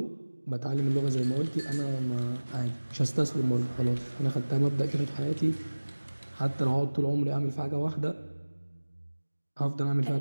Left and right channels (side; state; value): both; inverted; correlation -1.00